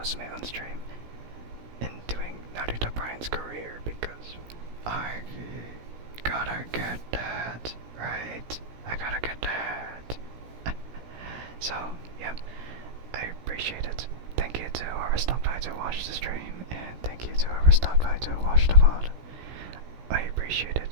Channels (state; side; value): late; left; 17 ms